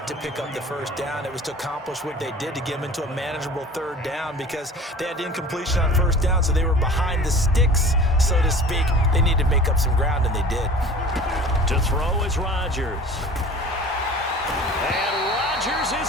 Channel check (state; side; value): normal; both; correlation 0.43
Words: to pick up the 1st down. It was to accomplish what they did to get them into a manageable 3rd down because they had incompletion on 1st down, so they were behind the sticks, so to speak. They needed to make up some ground, and they did. To throw is Rodgers.